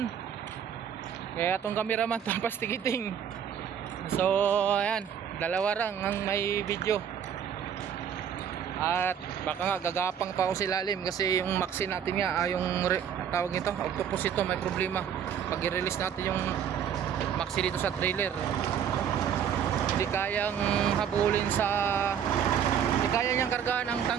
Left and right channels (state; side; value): quieter; left; 8.5 dB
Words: Kaya atong cameraman tapos tikiting. So ayan, dalawa lang ang may video. At baka nga gagapang pa ako sa ilalim kasi yung maxi natin nga, tawag nito, octopus ito, may problema. Pag i-release natin yung maxi dito sa trailer, hindi kayang habulin hindi kaya niyang kargahan ang